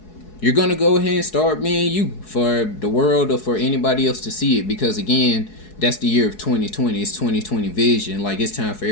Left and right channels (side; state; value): right; late; 4.7 ms